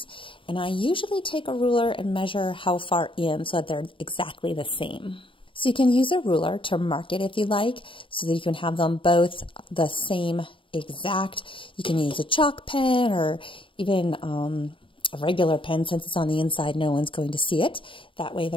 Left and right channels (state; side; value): late; right; 0.25 ms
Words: and I usually take a ruler and measure how far in so that they're exactly the same. So you can use a ruler to mark it if you like, so that you can have them both the same exact. You can use a chalk pen or even a regular pen. Since it's on the inside, no one's going to see it. That way